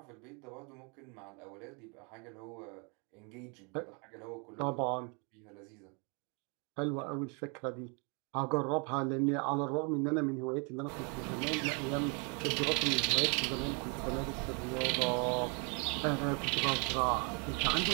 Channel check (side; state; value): left; quieter; 34.6 dB